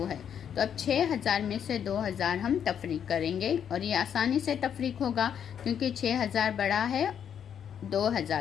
है, तो अब 6000 में से 2000 हम तफरीक करेंगे और ये आसानी से तफरीक होगा क्योंकि 6000 बड़ा है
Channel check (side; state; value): right; quieter; 8.5 dB